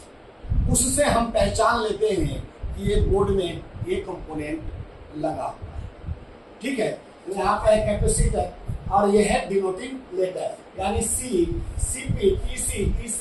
उससे हम पहचान लेते हैं कि ये बोर्ड में ये कंपोनेंट लगा हुआ है। ठीक है, यहाँ पे कैपेसिटर और ये है डिनोटिंग लेटर यानी C, CP, PC,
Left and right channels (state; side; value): identical; both; correlation 1.00